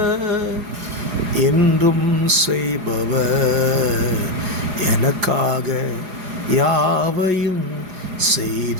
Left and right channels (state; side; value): late; left; 4.8 ms